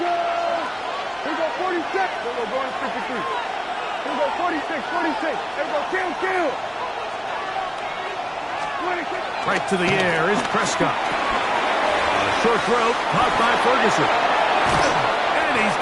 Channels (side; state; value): both; identical; correlation 1.00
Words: Here we go, 46. Here we go, going to 53. Here we go, 46, 46. Here we go, kill. 26. Right to the air is Prescott. A short throw, caught by Ferguson. And he's